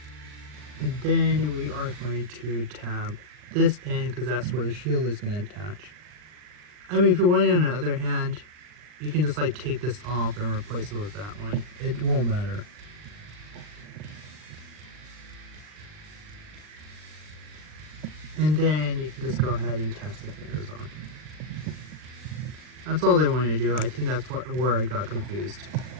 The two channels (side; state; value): left; late; 40 ms